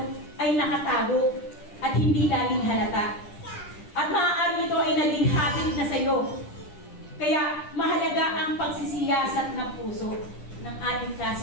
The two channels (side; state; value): right; late; 10 ms